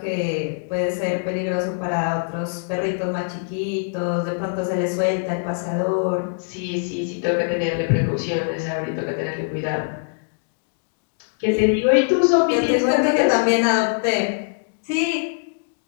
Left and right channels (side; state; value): right; silent; digital silence